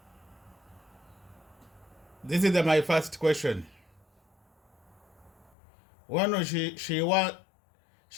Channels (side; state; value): right; drops out; at 5.5 s